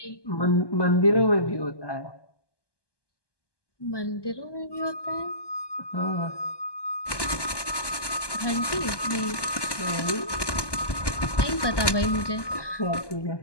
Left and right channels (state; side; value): late; right; 1.2 ms